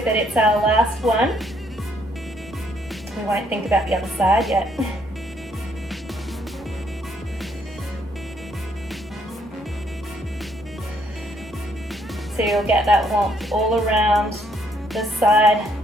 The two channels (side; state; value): both; normal; correlation 0.69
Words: it. It's our last one. We won't think about the other side yet. So you'll get that warmth all around the side,